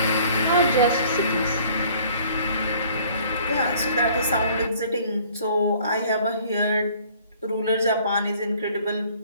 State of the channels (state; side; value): inverted; both; correlation -0.55